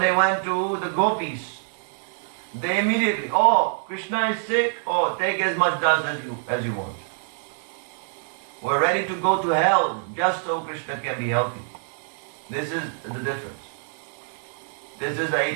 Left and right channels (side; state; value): left; silent; digital silence